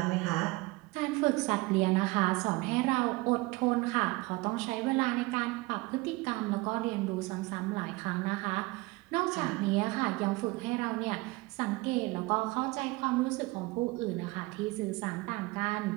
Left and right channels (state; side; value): quieter; left; 22.9 dB